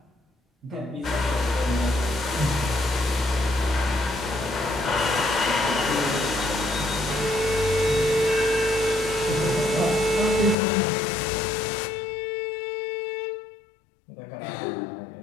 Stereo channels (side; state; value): right; drops out; at 10.6 s